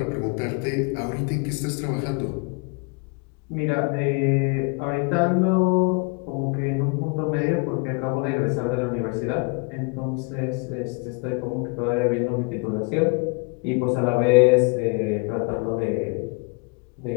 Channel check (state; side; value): quieter; right; 32.4 dB